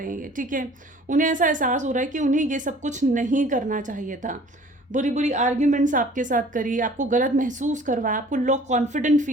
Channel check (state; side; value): normal; both; correlation 0.51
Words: हैं, ठीक है। उन्हें ऐसा एहसास हो रहा है कि उन्हें ये सब कुछ नहीं करना चाहिए था, बुरी बुरी आर्ग्यूमेंट्स आपके साथ करी, आपको गलत महसूस करवाया, आपको लो कॉन्फिडेंट